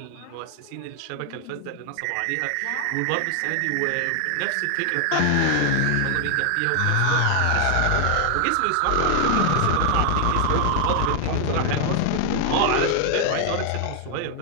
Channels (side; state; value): both; different; correlation 0.00